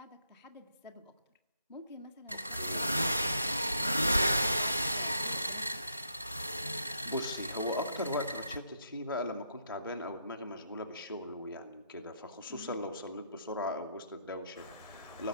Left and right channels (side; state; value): both; inverted; correlation -0.77